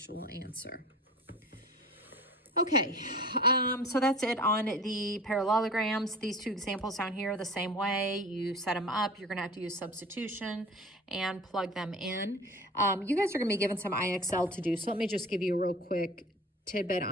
answer. Okay, so that's it on the parallelograms. These two examples down here are the same way. You set them up. You're going to have to use substitution and plug them in. You guys are going to be given some IXL to do, so let me just give you a real quick tidbit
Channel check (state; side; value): normal; both; correlation 0.40